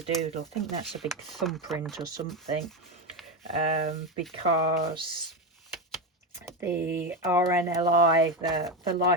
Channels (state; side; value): normal; both; correlation 0.14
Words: Doodle. I think that's a big thumbprint or something, because the RNLI, the